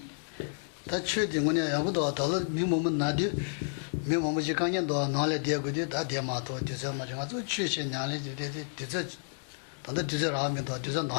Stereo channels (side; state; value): right; silent; digital silence